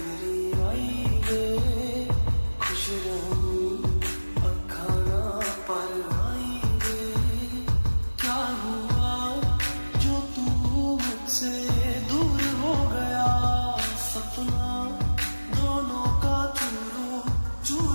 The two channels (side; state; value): both; inverted; correlation -1.00